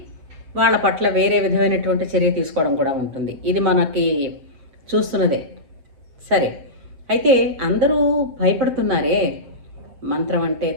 వాళ్ళ పట్ల వేరే విధమైనటువంటి చర్య తీసుకోవడం కూడా ఉంటుంది. ఇది మనకి చూస్తున్నదే. సరే, అయితే అందరూ భయపడుతున్నారే మంత్రం అంటే,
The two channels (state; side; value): late; left; 7.5 ms